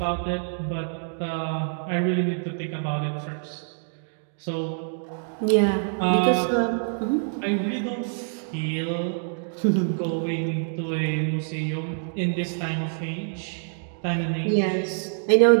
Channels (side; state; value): left; silent; digital silence